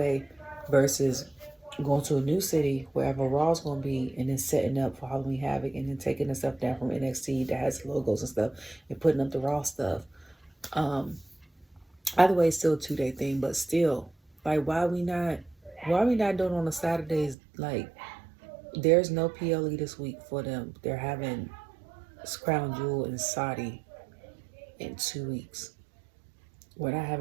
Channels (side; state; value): left; drops out; at 17.4 s